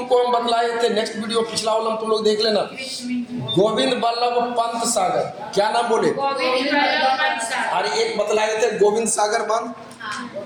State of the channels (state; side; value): identical; both; correlation 1.00